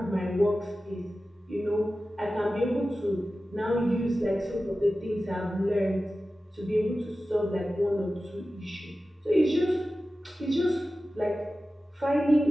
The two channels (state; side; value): normal; both; correlation 0.94